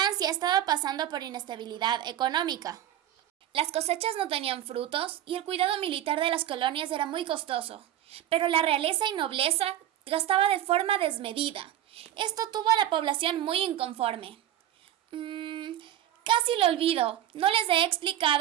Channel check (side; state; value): left; quieter; 11.9 dB